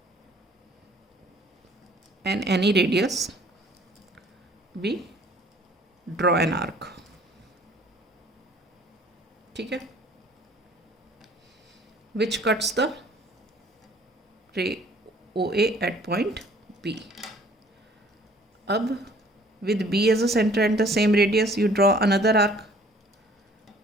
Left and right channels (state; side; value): normal; both; correlation 0.55